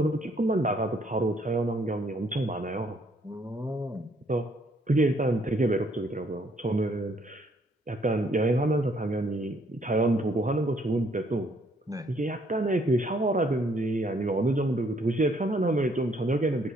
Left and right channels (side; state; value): both; normal; correlation 0.67